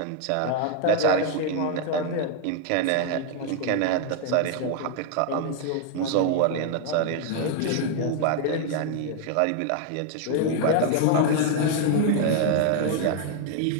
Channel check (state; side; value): different; both; correlation 0.00